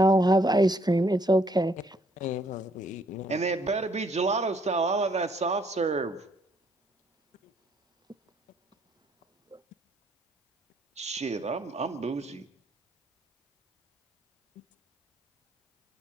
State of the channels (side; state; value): both; normal; correlation 0.67